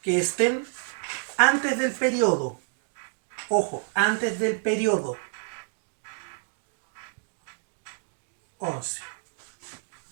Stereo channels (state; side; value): silent; left; digital silence